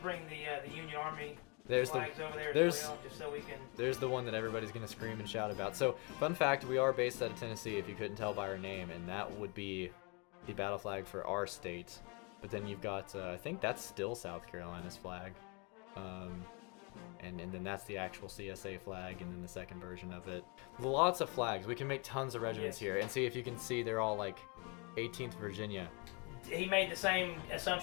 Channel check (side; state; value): right; quieter; 32.2 dB